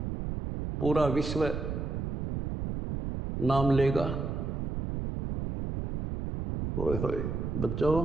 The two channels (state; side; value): noise; right; rumble, 3 dB below the sound